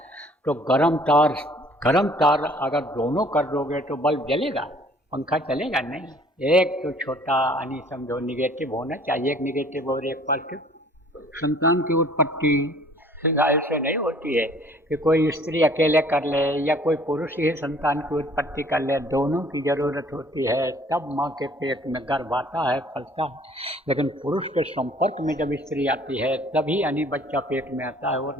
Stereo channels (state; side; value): normal; both; correlation 0.55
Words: तो गर्म तार अगर दोनों कर दोगे तो बल्ब जलेगा, पंखा चलेगा नहीं। एक तो छोटा यानी समझो निगेटिव होना चाहिए, एक निगेटिव और एक पॉजिटिव। संतान की उत्पत्ति ऐसे नहीं होती है कि कोई स्त्री अकेले कर ले या कोई पुरुष ही संतान की उत्पत्ति कर ले। दोनों की जरूरत होती है, तब माँ के पेट में गर्भ आता है, फलता है। लेकिन पुरुष के संपर्क में जब स्त्री आती है तभी यानी बच्चा पेट में आता है,